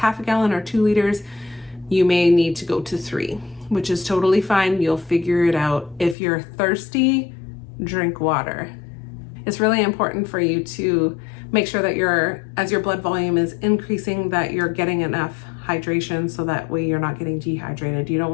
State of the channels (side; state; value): right; drops out; at 6.2 s